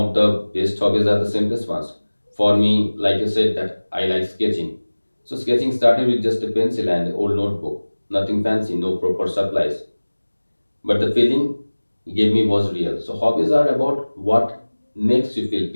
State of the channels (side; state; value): both; inverted; correlation -1.00